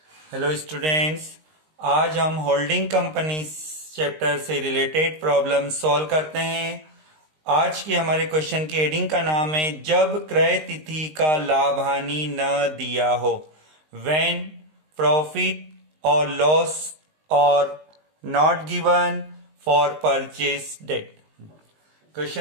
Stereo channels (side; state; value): left; late; 19 ms